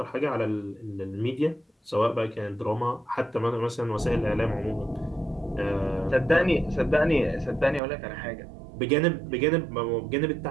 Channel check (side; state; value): left; drops out; at 7.8 s